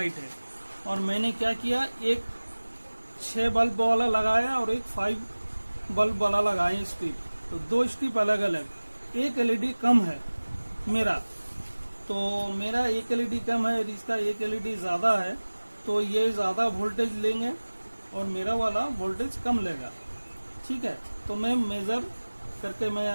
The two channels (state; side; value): inverted; both; correlation -1.00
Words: है, और मैंने क्या किया, एक 6 बल्ब वाला लगाया और एक 5 बल्ब वाला लगाया स्ट्रिप। तो 2 स्ट्रिप अलग अलग, एक एलईडी कम है मेरा, तो मेरा एक एलईडी कम है और इसका एक एलईडी ज्यादा है, तो ये ज्यादा वोल्टेज लेंगे और मेरा वाला वोल्टेज कम लेगा, ठीक है। तो मैं मेजर करके मैं